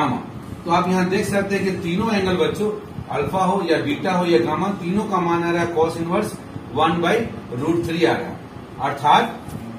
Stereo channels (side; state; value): both; identical; correlation 1.00